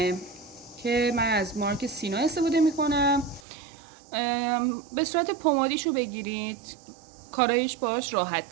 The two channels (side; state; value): left; drops out; at 3.4 s